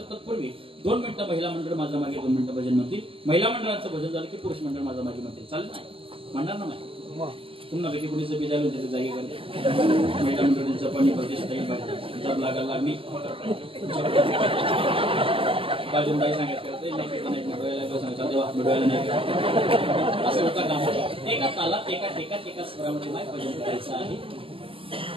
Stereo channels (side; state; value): left; late; 0.26 ms